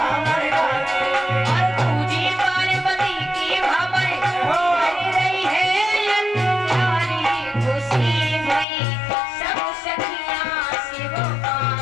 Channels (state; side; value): drops out; right; at 8.7 s